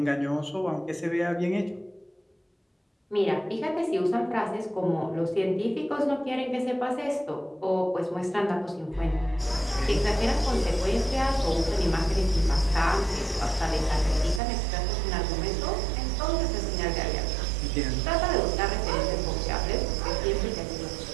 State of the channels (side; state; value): left; drops out; at 14.4 s